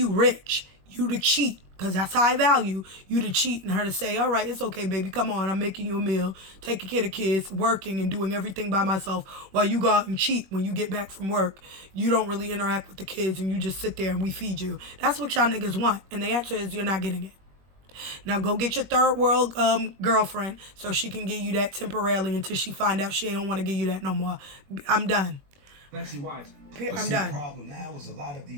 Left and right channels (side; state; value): left; late; 21 ms